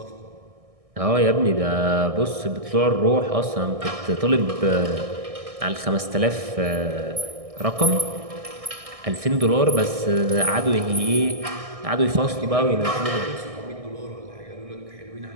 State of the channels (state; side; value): late; left; 1.6 ms